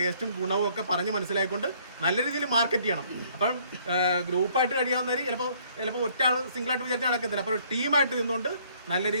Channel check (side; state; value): both; inverted; correlation -0.62